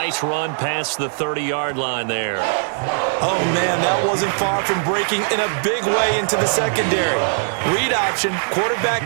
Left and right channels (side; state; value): left; silent; digital silence